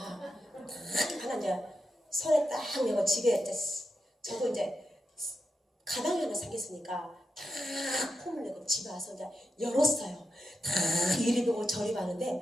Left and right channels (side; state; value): both; normal; correlation 0.87